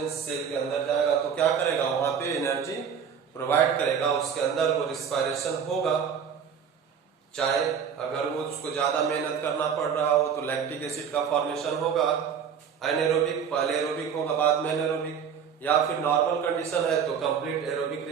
सेल के अंदर जाएगा तो क्या करेगा, वहां पे एनर्जी प्रोवाइड करेगा, उसके अंदर वो रिस्पायरेशन होगा। चाहे अगर वो उसको ज्यादा मेहनत करना पड़ रहा हो तो लैक्टिक एसिड का फॉर्मेशन होगा, एनारोबिक, पहले एरोबिक होगा बाद में एनारोबिक, या फिर नॉर्मल कंडीशन है तो कंप्लीट एरोबिक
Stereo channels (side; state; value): left; quieter; 7.4 dB